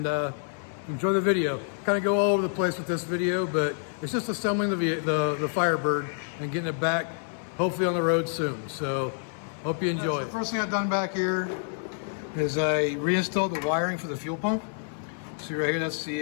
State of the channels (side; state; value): right; silent; 57 dB below the other